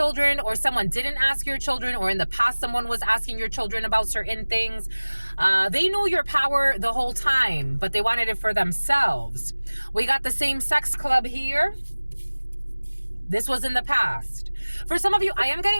or someone didn't ask your children, or in the past someone was asking your children about certain things. They knew your power the whole time, but they wanted it for themselves. We got the same-sex club here. This was in the past. For some of you, I am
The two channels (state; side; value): inverted; both; correlation -1.00